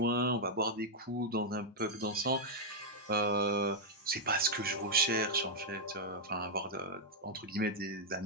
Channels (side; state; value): both; normal; correlation -0.03